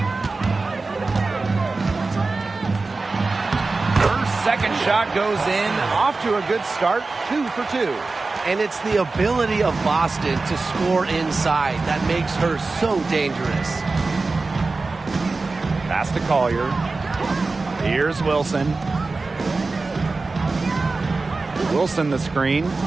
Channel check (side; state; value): left; quieter; 3.7 dB